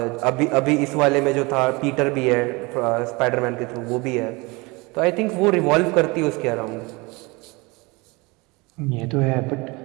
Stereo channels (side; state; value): left; quieter; 25.6 dB